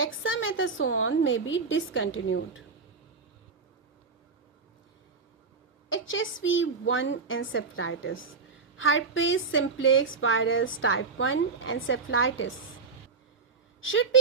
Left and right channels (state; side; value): quieter; left; 4.8 dB